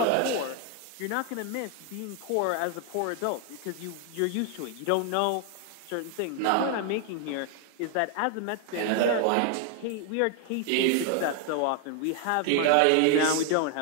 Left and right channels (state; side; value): different; both; correlation 0.00